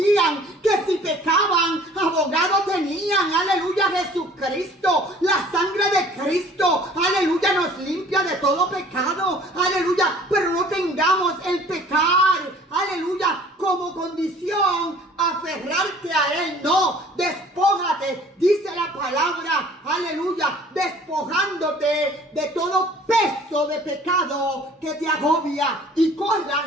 que si pecaban, abogado tenían. Aleluya. Jesucristo. La sangre de Cristo. Aleluya. Nos limpia de todo pecado. Aleluya. Pero no tengamos el pecar, aleluya, como condición, aferrarte a él. No, despójate, dice la palabra, aleluya, despojándote de todo peso de pecado que te agobia y corras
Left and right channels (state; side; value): normal; both; correlation 0.51